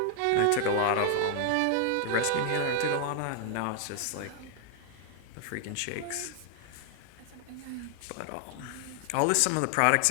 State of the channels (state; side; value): different; both; correlation 0.00